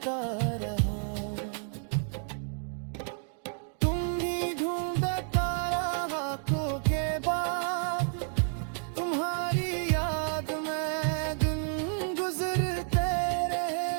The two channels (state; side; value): silent; left; 56 dB below the other